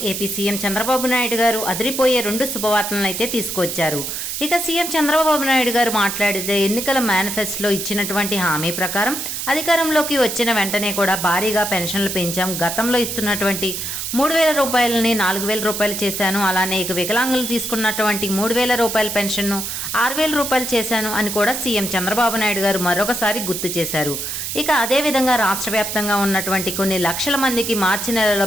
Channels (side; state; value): right; noise; hiss, 4 dB below the sound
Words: ఏపీ సీఎం చంద్రబాబు నాయుడు గారు అదిరిపోయే 2 శుభవార్తలను అయితే తీసుకొచ్చారు. ఇక సీఎం చంద్రబాబు నాయుడు గారు మాట్లాడితే ఎన్నికల మేనిఫెస్టోలో ఇచ్చినటువంటి హామీ ప్రకారం అధికారంలోకి వచ్చిన వెంటనే కూడా భారీగా పెన్షన్లు పెంచాం. గతంలో ఇస్తున్నటువంటి 3,000 రూపాయలని 4,000 రూపాయలు చేశాను. అలానే ఇక వికలాంగులు తీసుకున్నటువంటి 3,000 రూపాయల పెన్షన్ను 6,000 రూపాయలు చేశాను అని కూడా సీఎం చంద్రబాబు నాయుడు గారు మరొకసారి గుర్తు చేశారు. ఇక అదేవిధంగా రాష్ట్ర వ్యాప్తంగా ఉన్నటువంటి కొన్ని లక్షల మందికి మార్చి నెలలో